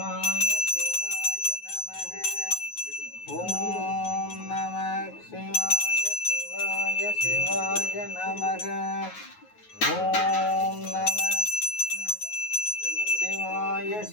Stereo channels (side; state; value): right; late; 9.4 ms